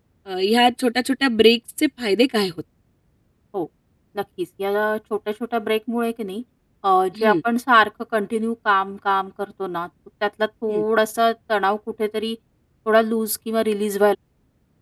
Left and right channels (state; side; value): identical; both; correlation 1.00